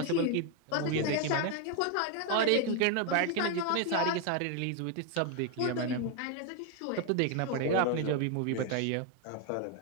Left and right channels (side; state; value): both; different; correlation 0.01